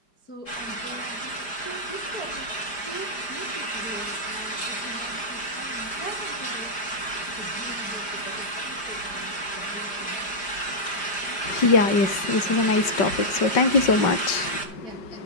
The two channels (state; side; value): late; right; 4.9 ms